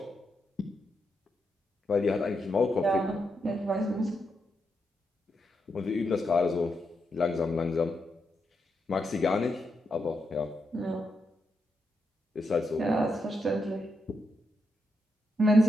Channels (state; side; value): normal; both; correlation 0.83